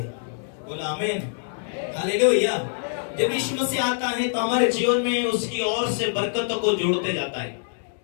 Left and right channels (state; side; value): silent; right; 62 dB below the other